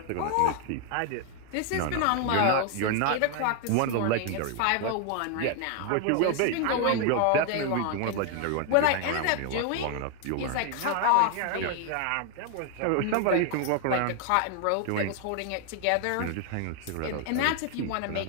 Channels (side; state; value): both; different; correlation 0.01